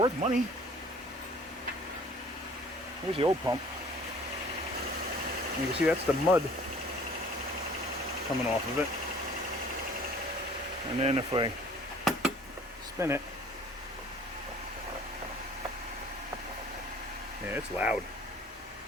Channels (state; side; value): normal; both; correlation 0.51